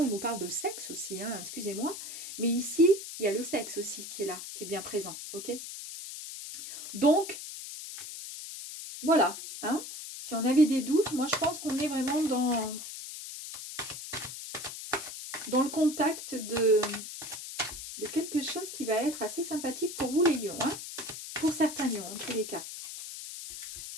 on nous parle de sexe aussi, hein, excusez-moi. Mais ici, il y a le sexe aussi qui est là, qui est bien présent, ok? Donc, voilà, hein. Si on avait des doutes, moi, je pense qu'on est vraiment dans le contact de quelque chose qui va être assez sympathique pour vous, les lions, hein. Pour certains lions, en tous les cas.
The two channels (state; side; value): noise; left; hiss, 9 dB below the sound